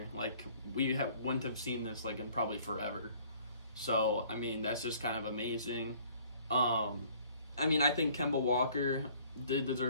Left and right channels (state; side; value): inverted; both; correlation -0.56